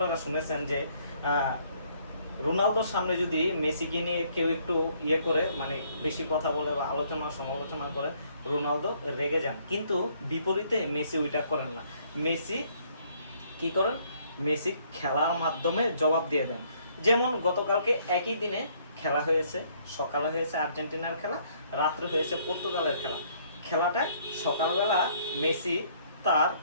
শুনেছেন যে রোনালদোর সামনে যদি মেসিকে নিয়ে কেউ একটু করে মানে বেশি কথা বলে বা আলোচনা সমালোচনা করে, রোনালদো রেগে যান। কিন্তু বিপরীতে মেসি ওইটা করেন না। মেসি কি করেন? মেসি খেলার মাধ্যমে জবাব দিয়ে দেন। যেমন গতকালকে একই দিনে খেলা হয়েছে, সকালে হয়েছে আর্জেন্টিনার খেলা, রাত্রে হয়েছে পর্তুগালের খেলা। খেলাটা সকালবেলা মেসি তার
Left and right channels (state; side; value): inverted; both; correlation -0.65